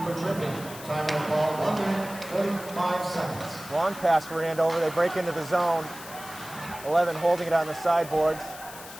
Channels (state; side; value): noise; left; hiss, 15 dB below the sound